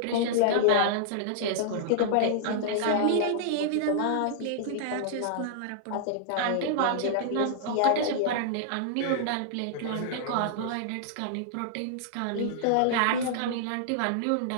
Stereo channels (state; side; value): different; both; correlation -0.01